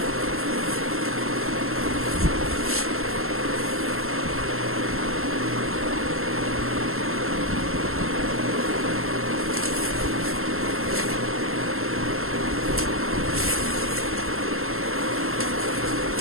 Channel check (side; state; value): left; late; 0.62 ms